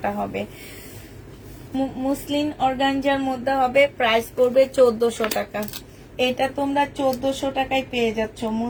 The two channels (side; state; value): both; identical; correlation 1.00